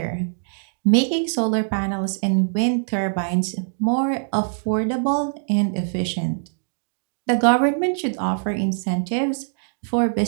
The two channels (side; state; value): left; silent; digital silence